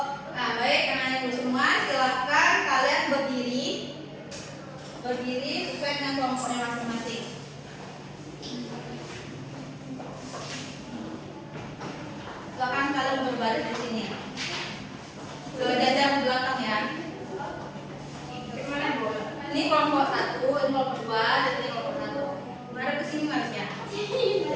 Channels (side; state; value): both; identical; correlation 1.00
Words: kelompoknya masing-masing. Silakan kalian berbaris di sini. Berjajar ke belakang ya. Ini kelompok 1, ini kelompok 2, dan ini kelompok 1. Mari ke sini Marsya.